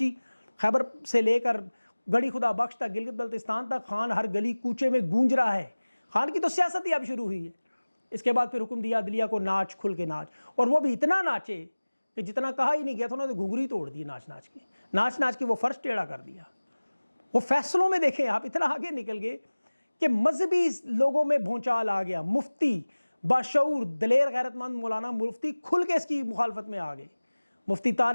خیبر سے لے کر گڑھی خدا بخش تک, گلگت بلتستان تک خان ہر گلی کوچے میں گونج رہا ہے. خان کی تو سیاست ہی اب شروع ہوئی ہے. اس کے بعد پھر حکم دیا عدلیہ کو ناچ, کھل کے ناچ, اور وہ بھی اتنا ناچے کہ جتنا کہا ہی نہیں گیا تھا انہوں نے گھنگری توڑ دی. ناچ ناچ کے وہ فرش ٹیڑھا کر دیا. وہ فیصلوں میں دیکھیں آپ اتنا آگے نکل گئے کہ مذہبی لوگوں میں بھونچال آ گیا. مفتی باشعور دلیر غیرت مند مولانا مفتی کھل کے اس کی مخالفت میں آ گئے. مفتی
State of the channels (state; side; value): inverted; both; correlation -1.00